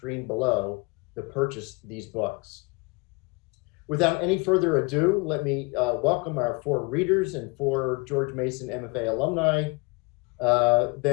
below to purchase these books. Without any further ado, let me welcome our four readers and four George Mason MFA alumni.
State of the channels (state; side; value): quieter; right; 28.7 dB